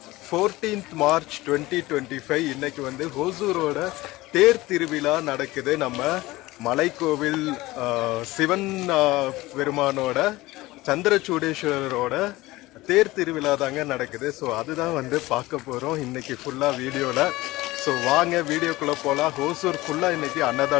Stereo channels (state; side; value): quieter; right; 19.2 dB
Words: 14th March 2025 இன்னைக்கு வந்து ஹோசூரோட தேர் திருவிழா நடக்குது. நம்ம மலைக்கோவில் சிவன் பெருமானோட சந்திரசூடேஸ்வரரோட தேர் திருவிழா தாங்க நடக்குது. ஸோ அதுதான் வந்து பார்க்க போகிறோம் இன்னைக்கு ஃபுல்லாக வீடியோவில். ஸோ வாங்க வீடியோக்குள்ளே போகலாம். ஹோசூர் ஃபுல்லாக இன்னைக்கு